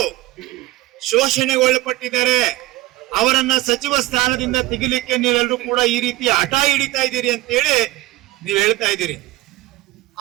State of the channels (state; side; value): quieter; left; 18.3 dB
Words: ಶೋಷಣೆಗೊಳಪಟ್ಟಿದ್ದಾರೆ, ಅವರನ್ನ ಸಚಿವ ಸ್ಥಾನದಿಂದ ತೆಗಿಲಿಕ್ಕೆ ನೀವೆಲ್ಲರೂ ಕೂಡ ಈ ರೀತಿ ಹಠ ಹಿಡಿತಾ ಇದ್ದೀರಿ ಅಂತ ಹೇಳಿ ನೀವು ಹೇಳ್ತಾ ಇದ್ದೀರಿ.